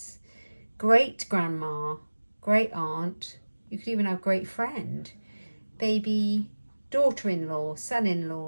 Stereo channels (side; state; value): both; inverted; correlation -1.00